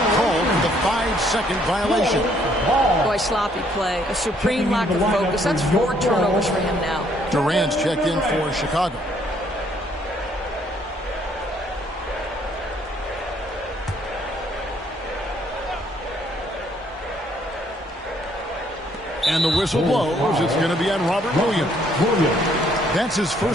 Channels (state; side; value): normal; both; correlation 0.66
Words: called for the 5-second violation. Boy, sloppy play. A supreme lack of focus. That's 4 turnovers for him now. Durant's checked in for Chicago. And the whistle blows. It's going to be on Robert Williams. That's his